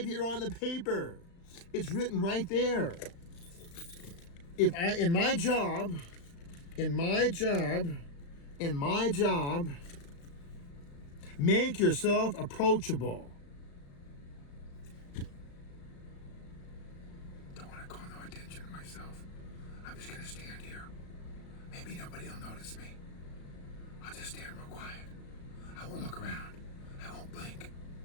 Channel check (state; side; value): late; right; 35 ms